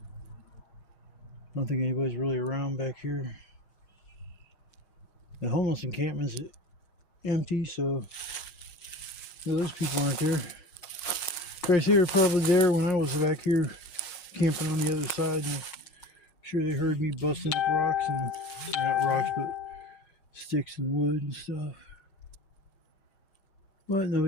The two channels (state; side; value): late; right; 6.4 ms